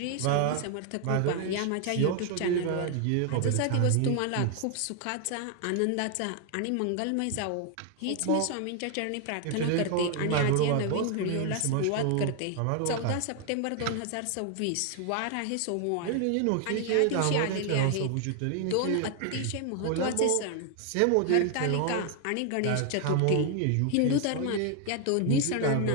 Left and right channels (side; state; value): both; different; correlation 0.00